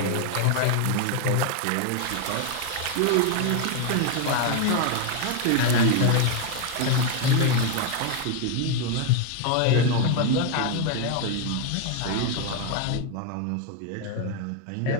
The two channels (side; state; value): both; different; correlation 0.01